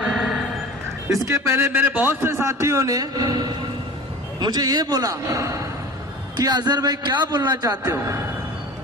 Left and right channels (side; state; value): both; normal; correlation 0.37